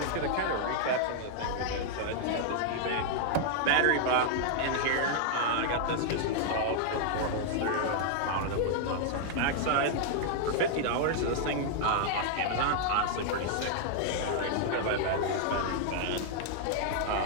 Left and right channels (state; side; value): different; both; correlation 0.00